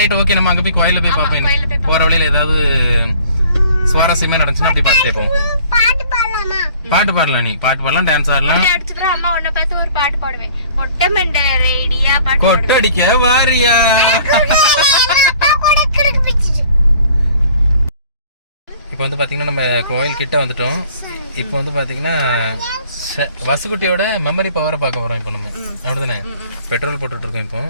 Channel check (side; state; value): both; inverted; correlation -0.52